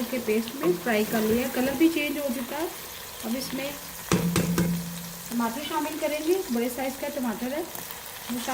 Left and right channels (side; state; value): both; identical; correlation 1.00